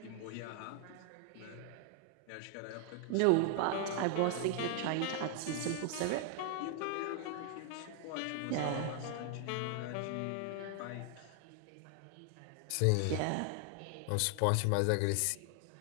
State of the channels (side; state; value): both; different; correlation 0.00